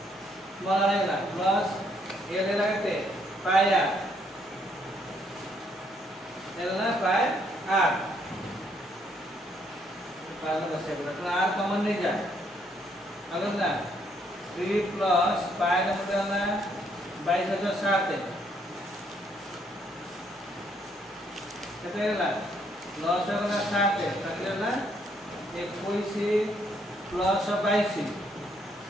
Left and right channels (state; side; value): normal; both; correlation 0.70